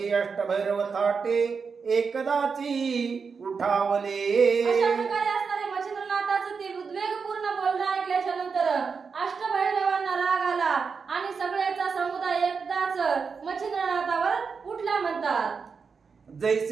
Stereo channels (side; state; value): left; quieter; 5.4 dB